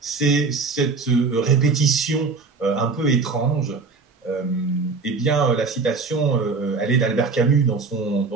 c'est cette répétition un peu étrange. Eh bien, la citation, elle est d'Albert Camus dans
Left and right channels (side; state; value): left; quieter; 4.4 dB